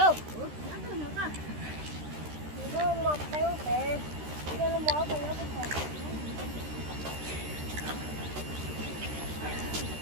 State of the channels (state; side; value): late; left; 13 ms